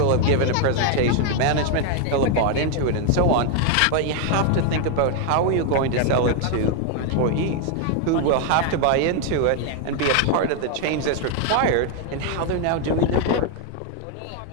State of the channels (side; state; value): both; different; correlation 0.00